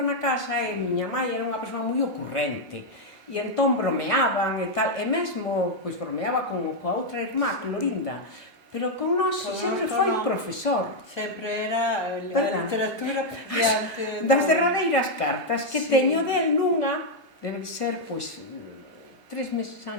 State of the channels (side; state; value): both; normal; correlation -0.01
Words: casa e miña mãe era unha persoa moi ocurrente. E entón bromeaban e tal, e mesmo, pois bromeaba coa outra irmá, Clorinda, pero con nós sempre foi profesor. Sempre era a literatura diante. Das derradeiras cartas que teño del nunha, debe ser, pois, 3 meses